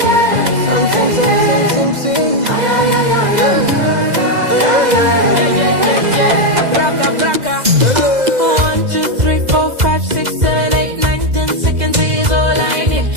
Something. Baraka. 1, 2, 3, 4, 5, 6, 7, 8, 9, 10 seconds is all I need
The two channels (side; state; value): left; late; 2.0 ms